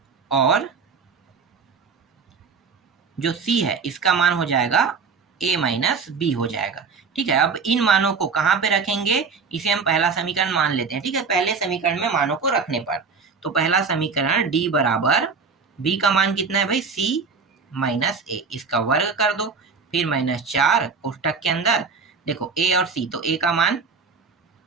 और जो c है इसका मान हो जाएगा a माइनस बी हो जाएगा। ठीक है, अब इन मानों को कहाँ पे रखेंगे, इसे हम पहला समीकरण मान लेते हैं। ठीक है, पहले समीकरण में मानों को रखने पर, तो पहला समीकरण d बराबर b का मान कितना है भाई, c माइनस a, इसका वर्ग कर दो, फिर -4 कोष्टक के अंदर देखो a और c, तो a का मान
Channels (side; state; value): left; quieter; 5.1 dB